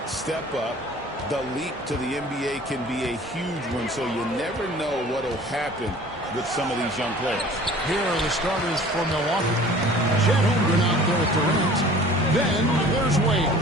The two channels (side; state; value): both; normal; correlation 0.47